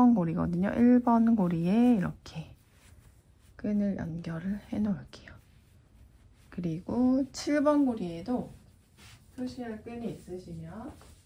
고리거든요. 1번 고리에 이렇게 끈을 연결을 해 놓을게요. 그리고 7번 고리에도 표시할 끈이 있으시면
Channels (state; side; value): identical; both; correlation 1.00